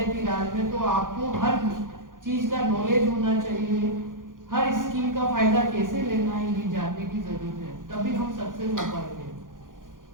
राज में, तो आपको हर चीज का नॉलेज होना चाहिए, हर स्कीम का फायदा कैसे लेना है ये जानने की जरूरत है, तभी हम सक्सेस हो पाएंगे।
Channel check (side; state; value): left; late; 0.89 ms